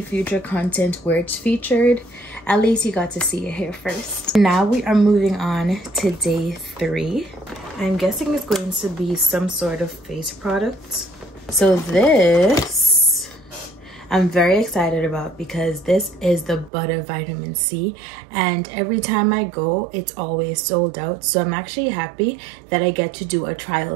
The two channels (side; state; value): left; drops out; at 16.7 s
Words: future content where it's featured, at least you got to see it here first. Now we are moving on to day 3. I'm guessing it's going to be some sort of face product. So this I'm very excited about because this is the Butter Vitamin C, and every time I go it's always sold out. So I'm actually happy that I get to do a